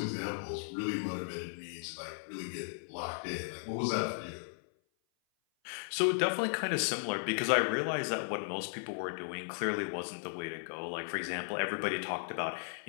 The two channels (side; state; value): right; silent; 54 dB below the other